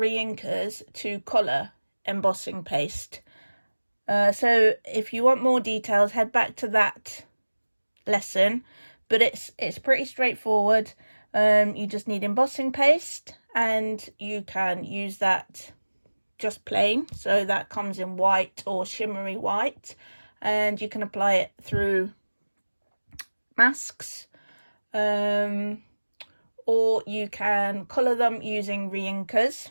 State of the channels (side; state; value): both; inverted; correlation -1.00